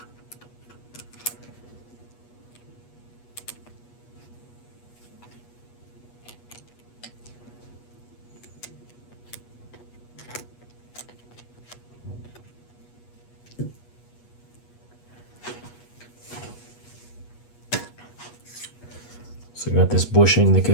So I got this bushing that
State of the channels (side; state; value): right; late; 8.3 ms